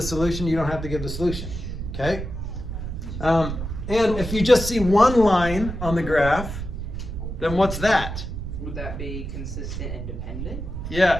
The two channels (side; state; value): right; noise; rumble, 6 dB below the sound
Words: solution. You don't have to give the solution, okay? And if you just see one line on the graph, then what's that? Would that be consistent and dependent?